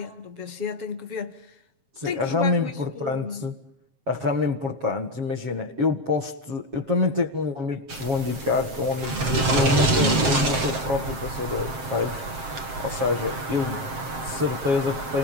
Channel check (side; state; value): left; late; 7.6 ms